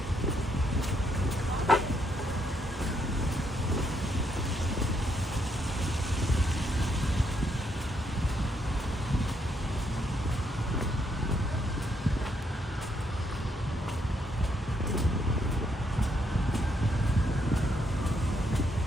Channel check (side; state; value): both; normal; correlation 0.75